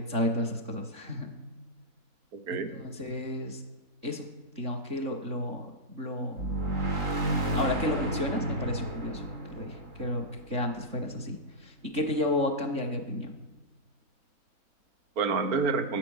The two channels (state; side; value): late; left; 3.6 ms